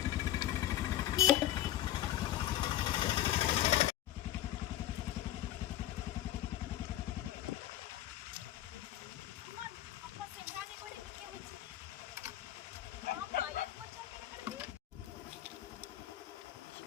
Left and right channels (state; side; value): quieter; right; 13.1 dB